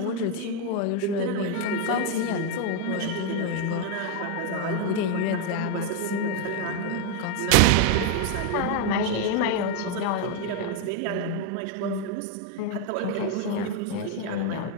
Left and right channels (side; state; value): both; different; correlation 0.01